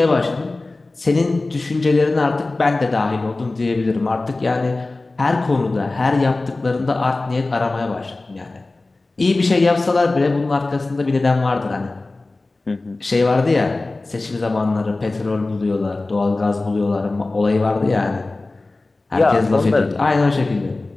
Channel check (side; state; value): right; quieter; 3.2 dB